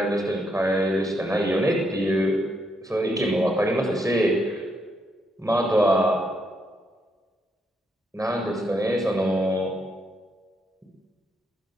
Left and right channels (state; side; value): normal; both; correlation 0.77